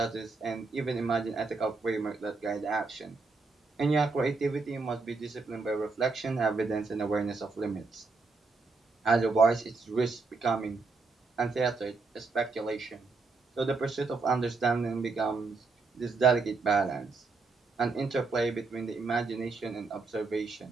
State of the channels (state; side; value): quieter; left; 4.1 dB